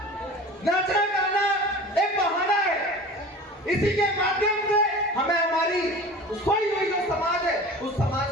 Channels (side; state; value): both; normal; correlation 0.38